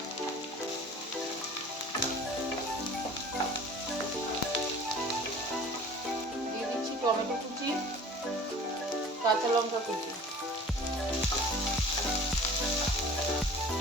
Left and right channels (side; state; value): both; normal; correlation 0.45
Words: দিয়ে দিচ্ছি টমেটো কুচি, কাঁচা লঙ্কা কুচি।